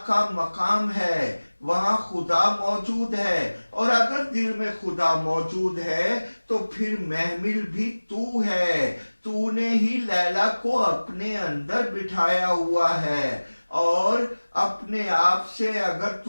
کا مقام ہے، وہاں خدا موجود ہے، اور اگر دل میں خدا موجود ہے تو پھر محمل بھی تو ہے، تو نے ہی لیلا کو اپنے اندر بٹھایا ہوا ہے، اور اپنے آپ سے اگر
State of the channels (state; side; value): inverted; both; correlation -1.00